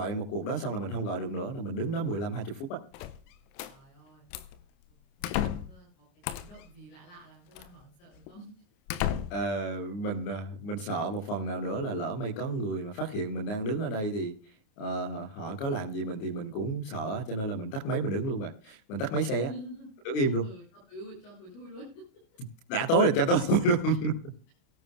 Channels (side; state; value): right; late; 29 ms